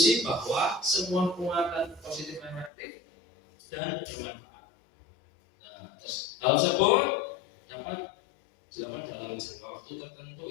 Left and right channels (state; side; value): drops out; right; at 2.7 s